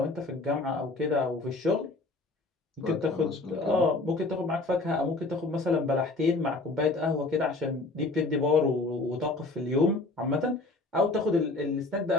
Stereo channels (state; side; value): quieter; right; 3.2 dB